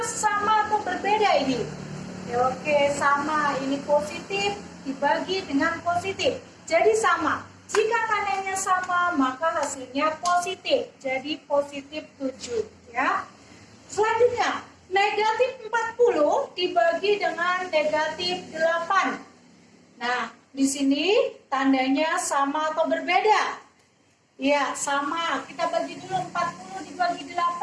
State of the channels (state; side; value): identical; both; correlation 1.00